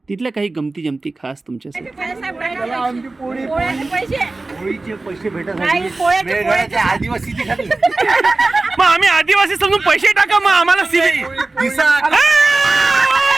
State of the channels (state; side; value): quieter; left; 3.3 dB